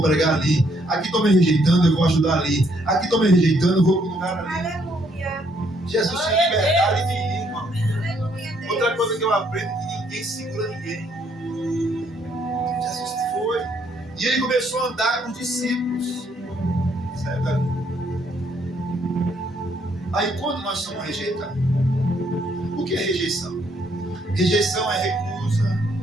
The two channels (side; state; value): both; normal; correlation 0.70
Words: pregar ali. Aqui estão me rejeitando, eu vou ajudar ali. Aqui estão me rejeitando, eu vou para o lugar ali. Aleluia. Jesus tinha liberdade de ir, irmão. Aleluia, Deus. Outra coisa que eu aprendo é que ninguém segura ninguém. Jesus foi. E ele começou a andar com os discípulos. Certo? Aí quando nós somos rejeitados, o que é rejeição? Rejeição é recusa,